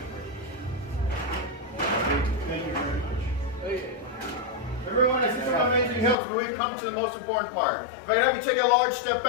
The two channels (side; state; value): right; drops out; at 6.2 s